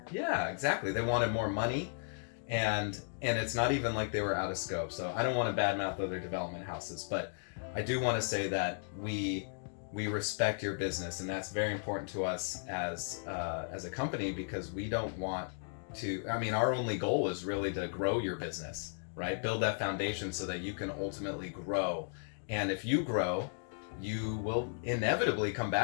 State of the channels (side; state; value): right; silent; digital silence